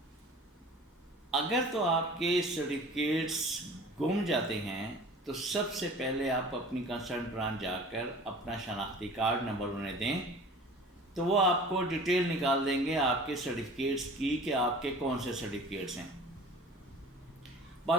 اگر تو آپ کے سرٹیفکیٹس گم جاتے ہیں تو سب سے پہلے آپ اپنی کنسرن برانچ جا کر اپنا شناختی کارڈ نمبر انہیں دیں، تو وہ آپ کو ڈیٹیل نکال دیں گے آپ کے سرٹیفکیٹس کی کہ آپ کے کون سے سرٹیفکیٹس ہیں۔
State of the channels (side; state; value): both; normal; correlation 0.43